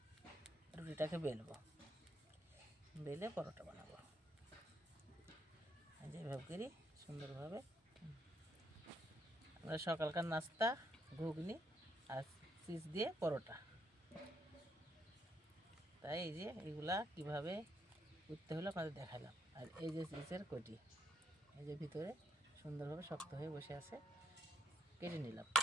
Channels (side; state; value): both; normal; correlation 0.74